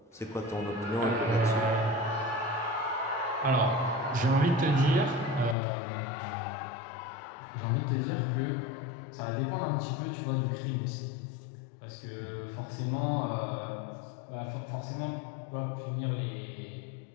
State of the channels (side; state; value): right; drops out; at 5.6 s